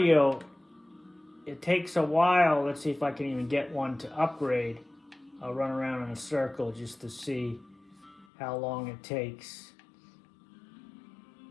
it takes a while. Let's see if I can even get one to upgrade. I'll run around in a circle just to see how long it takes.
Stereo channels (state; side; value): drops out; right; at 8.2 s